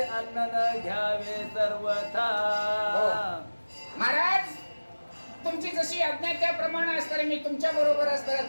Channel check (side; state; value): both; inverted; correlation -1.00